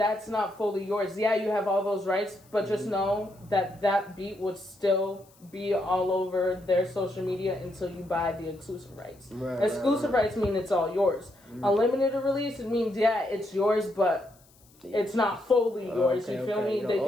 not fully yours. Yeah, you have all those rights, but just know that beat would still be all over their social media until you buy the exclusive rights. Exclusive rights mean it's all yours. Unlimited release, it means, it's yours, but it's not fully yours. You feel me? They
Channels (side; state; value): left; noise; hiss, 29 dB below the sound